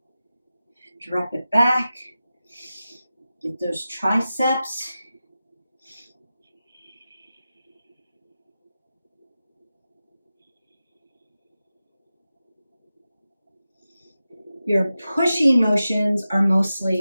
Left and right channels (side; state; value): both; inverted; correlation -0.93